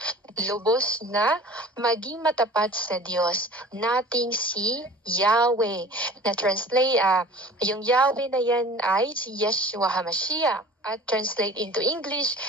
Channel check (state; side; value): normal; both; correlation 0.44